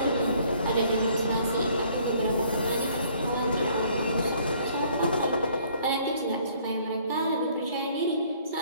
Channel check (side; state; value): both; inverted; correlation -0.60